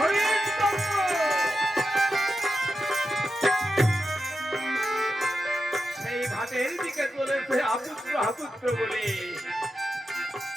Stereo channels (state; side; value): normal; both; correlation 0.89